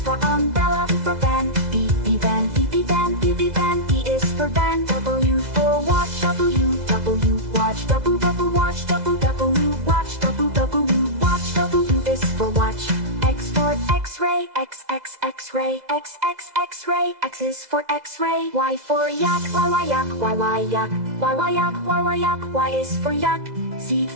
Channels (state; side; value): late; left; 2.0 ms